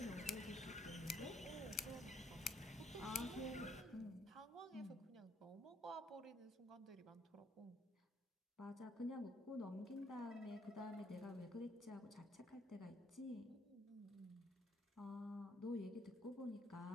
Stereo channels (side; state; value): both; normal; correlation 0.67